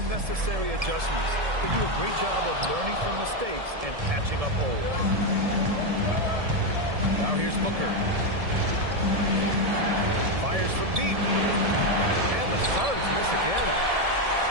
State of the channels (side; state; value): left; late; 1.7 ms